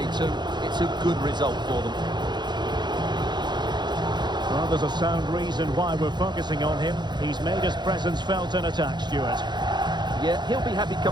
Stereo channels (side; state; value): left; late; 0.21 ms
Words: too. It's a good result for them. Well, there's a sound reason why we're focusing on him. He's made his presence felt in attack, Stuart. Yeah, he'll be happy